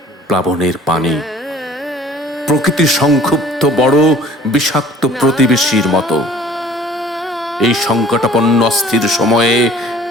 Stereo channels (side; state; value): both; normal; correlation 0.51